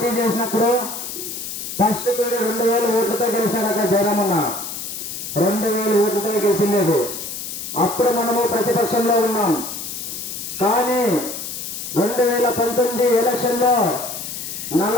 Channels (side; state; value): left; noise; hiss, 7 dB below the sound